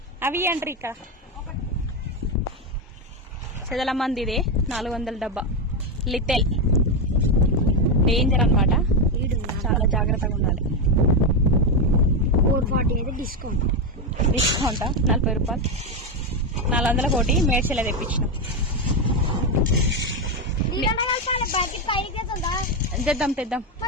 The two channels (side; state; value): both; normal; correlation 0.09